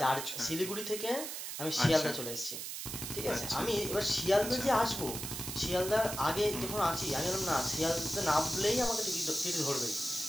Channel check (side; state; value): right; noise; hiss, 6 dB below the sound